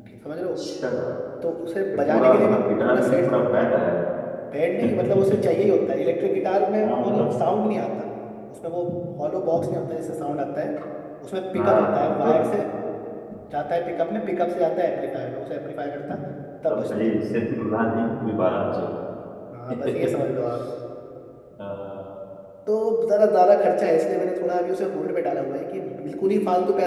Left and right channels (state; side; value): identical; both; correlation 1.00